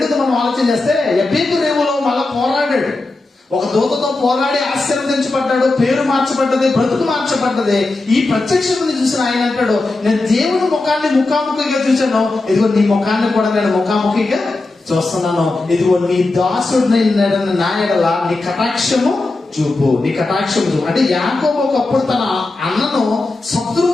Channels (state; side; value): quieter; right; 3.2 dB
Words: మనం ఆలోచన చేస్తే ఎబ్బెక్కి రేవులో మళ్ళా పోరాడాడు, ఒక దూతతో పోరాడి ఆశీర్వదించబడ్డాడు, పేరు మార్చబడ్డది, బ్రతుకు మార్చబడ్డది. ఈ ప్రత్యక్షతను చూసిన ఆయన అంటాడు, నేను దేవుని ముఖాన్ని ముఖాముఖిగా చూశాను, ఇదిగో నీ ముఖాన్ని కూడా నేను ముఖాముఖిగా చూస్తున్నాను, ఇదిగో నీ దాసుడిని నా ఎడల నీ కటాక్షము చూపు. అంటే యాకోబు ఒకప్పుడు తన అన్నను